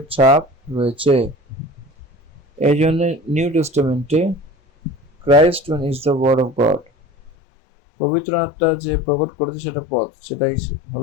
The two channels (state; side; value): drops out; right; at 7.3 s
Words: ছাপ রয়েছে। এই জন্য নিউ টেস্টামেন্টে Christ is the word of God. পবিত্র আত্মা যে প্রকট করেছে সেটা পদ, সেটাই